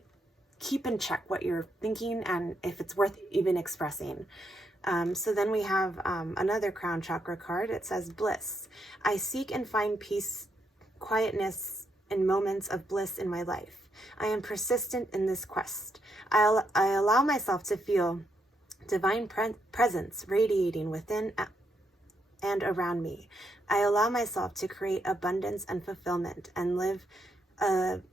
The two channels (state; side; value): normal; both; correlation 0.79